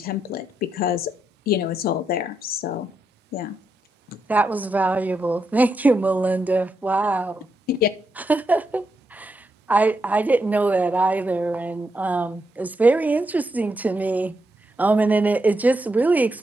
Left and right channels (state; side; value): normal; both; correlation 0.82